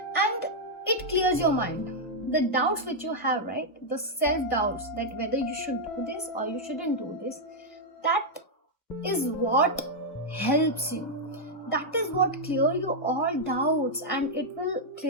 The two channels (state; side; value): normal; both; correlation -0.03